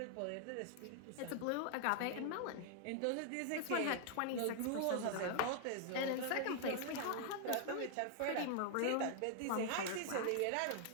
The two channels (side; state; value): both; different; correlation 0.00